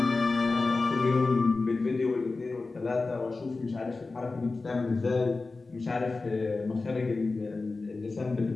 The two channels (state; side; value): quieter; right; 3.7 dB